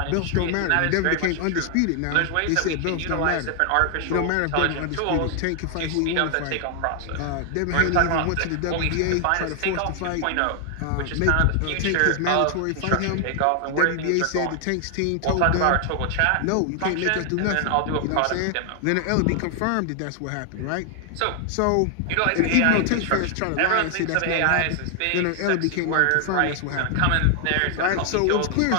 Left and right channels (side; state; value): both; different; correlation 0.00